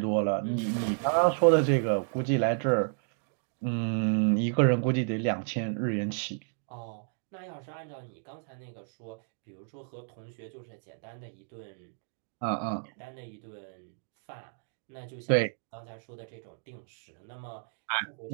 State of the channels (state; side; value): silent; left; digital silence